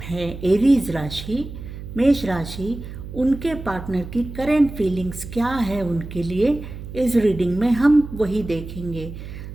हैं, एरीज राशि, मेष राशि, उनके पार्टनर की करंट फीलिंग्स क्या है उनके लिए, इस रीडिंग में हम वही देखेंगे।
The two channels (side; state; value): right; noise; hum, 11 dB below the sound